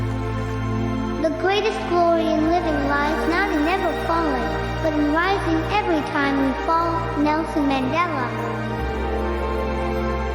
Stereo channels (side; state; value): both; identical; correlation 1.00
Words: The greatest glory in living lies not in never falling, but in rising every time we fall. Nelson Mandela.